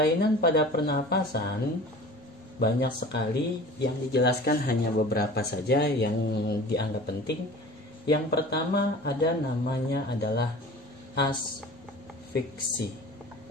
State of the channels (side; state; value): both; normal; correlation 0.40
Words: pada pernapasan banyak sekali, yang dijelaskan hanya beberapa saja yang dianggap penting. Yang pertama namanya adalah asfiksi,